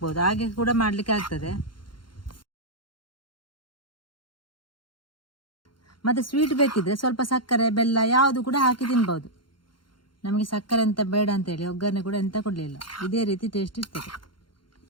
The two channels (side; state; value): right; late; 0.72 ms